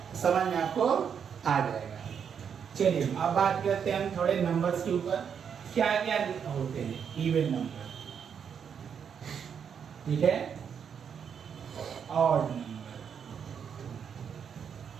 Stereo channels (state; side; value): quieter; left; 7.4 dB